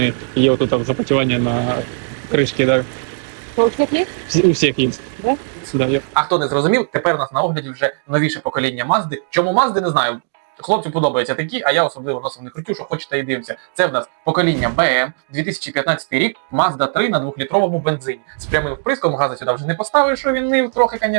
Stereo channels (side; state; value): left; silent; digital silence